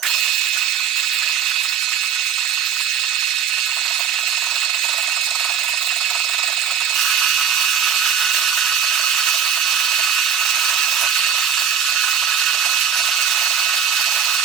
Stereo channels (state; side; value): quieter; left; 7.8 dB